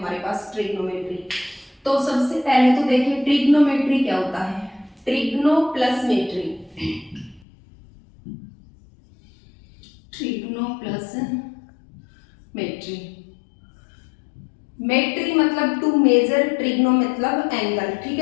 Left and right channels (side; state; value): right; drops out; at 7.5 s